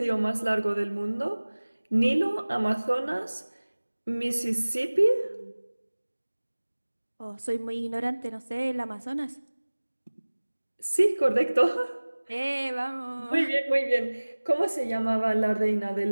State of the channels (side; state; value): both; inverted; correlation -1.00